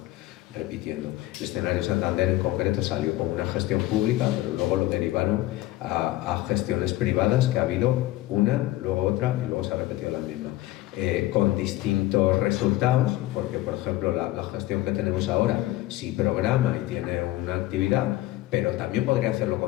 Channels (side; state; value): right; quieter; 16.6 dB